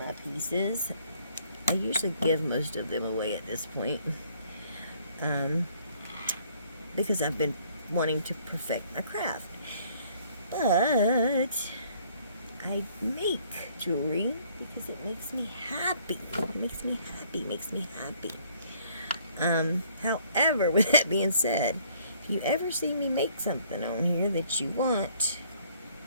pieces, I usually give most of them away at this point. Because I've been wanting to perfect my craft. But I make jewelry because it makes me happy. It makes me happy, makes me happy. However, with that being said, if you ever see me make something on here that you want,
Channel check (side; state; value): both; inverted; correlation -0.61